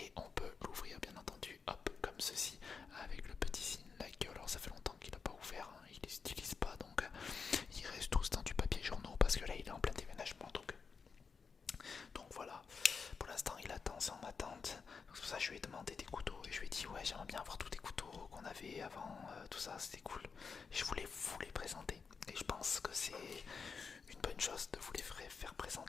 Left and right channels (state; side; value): quieter; right; 5.5 dB